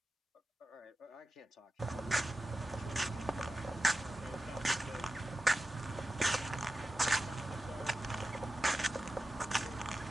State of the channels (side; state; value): both; normal; correlation 0.92